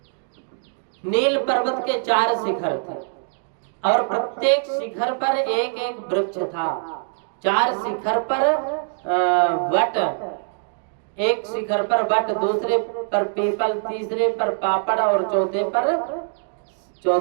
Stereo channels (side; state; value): left; silent; digital silence